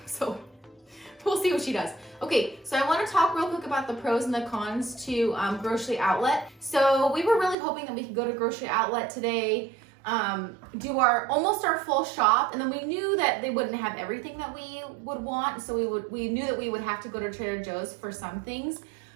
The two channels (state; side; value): drops out; left; at 7.6 s